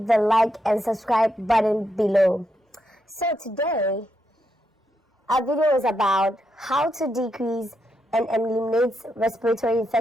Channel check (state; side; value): normal; both; correlation 0.81